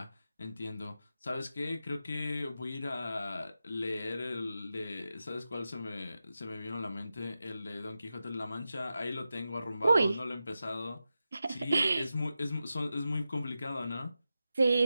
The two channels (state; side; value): inverted; both; correlation -0.91